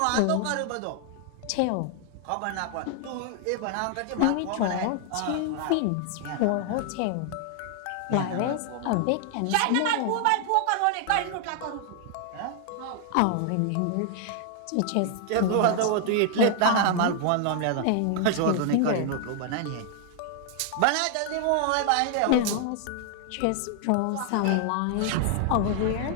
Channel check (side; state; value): both; different; correlation 0.00